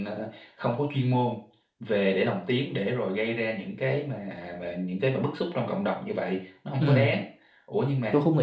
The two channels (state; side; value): identical; both; correlation 1.00